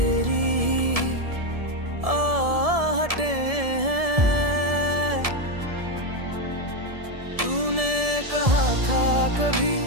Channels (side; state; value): left; late; 1.7 ms